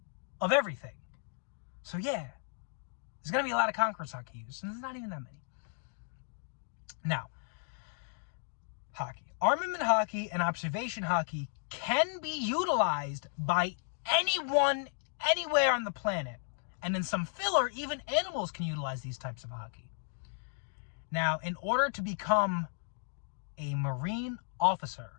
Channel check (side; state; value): right; silent; digital silence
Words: of everything. So yeah, there's going to be a lot of Conqueror's Haki users, and there's not even that many. Now, Haki. Armament Haki and Observation Haki can be utilized by anyone, anywhere on the planet. And in some filler, even animals can utilize these types of Haki. Now, in order to become a Marine officer,